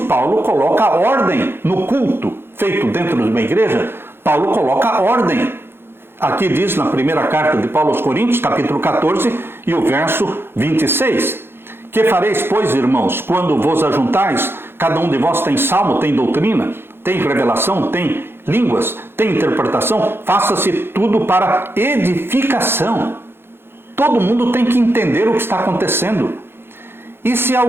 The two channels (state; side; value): late; left; 0.11 ms